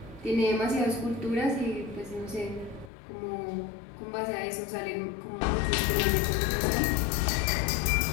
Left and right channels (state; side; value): drops out; right; at 2.9 s